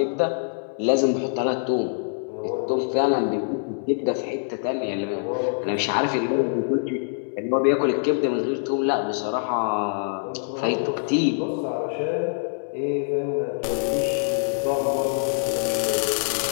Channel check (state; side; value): silent; right; digital silence